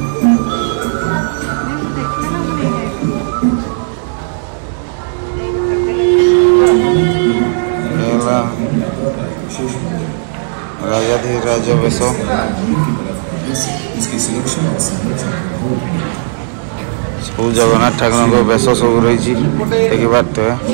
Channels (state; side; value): silent; left; digital silence